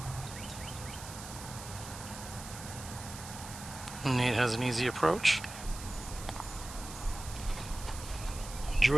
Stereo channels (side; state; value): right; noise; hiss, 12 dB below the sound